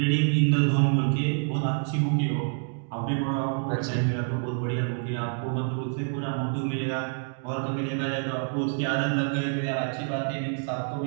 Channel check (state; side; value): silent; left; 60 dB below the other